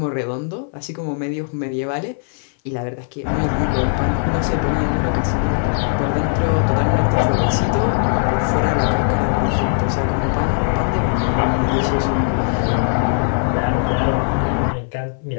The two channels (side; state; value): right; silent; 59 dB below the other